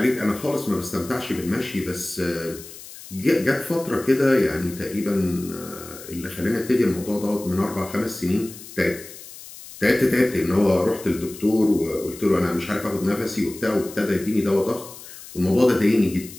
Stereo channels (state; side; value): noise; left; hiss, 16 dB below the sound